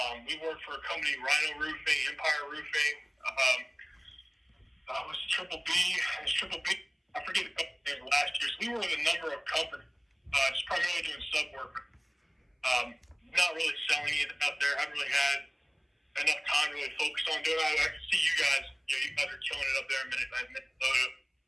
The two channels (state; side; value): identical; both; correlation 1.00